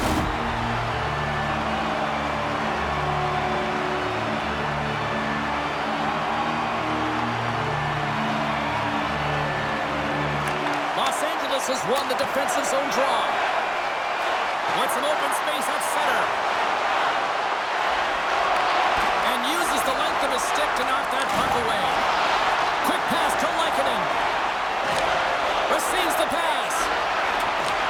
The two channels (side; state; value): both; identical; correlation 1.00